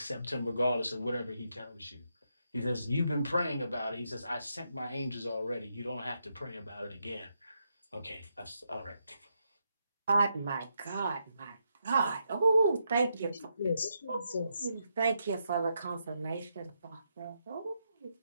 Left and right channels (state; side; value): inverted; both; correlation -0.81